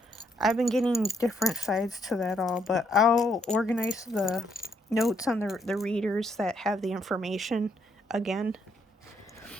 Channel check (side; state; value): both; normal; correlation 0.73